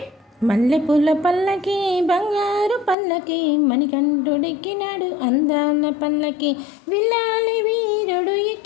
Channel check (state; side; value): drops out; right; at 3.0 s